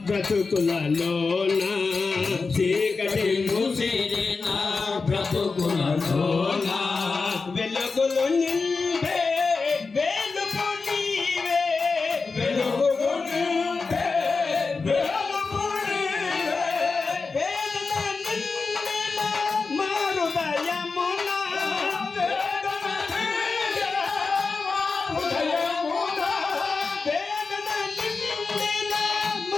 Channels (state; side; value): quieter; right; 4.4 dB